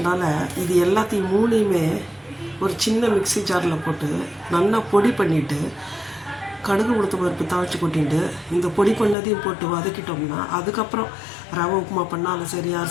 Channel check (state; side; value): drops out; right; at 9.2 s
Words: இது எல்லாத்தையும் மூணையுமே ஒரு சின்ன மிக்ஸி ஜாரில் போட்டு நல்லா பொடி பண்ணிவிட்டு கடுகு உளுத்தம் பருப்பு தாளித்து கொட்டிட்டு இந்த பொடி பண்ணதையும் போட்டு வதக்கிட்டோம்னா அதுக்கப்புறம் ரவை உப்புமா பண்ணாலும் சரி,